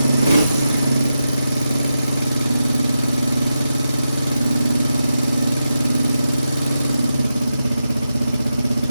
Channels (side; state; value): both; inverted; correlation -0.89